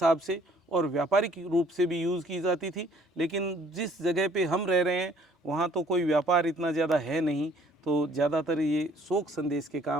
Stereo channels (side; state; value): both; normal; correlation 0.59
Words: से और व्यापारिक रूप से भी यूज़ की जाती थी। लेकिन जिस जगह पे हम रह रहे हैं वहाँ तो कोई व्यापार इतना ज़्यादा है नहीं, तो ज़्यादातर ये शोक संदेश के